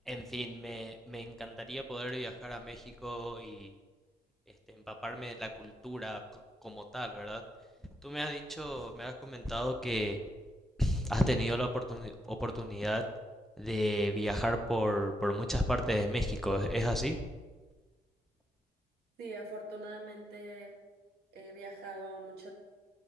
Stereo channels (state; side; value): normal; both; correlation 0.82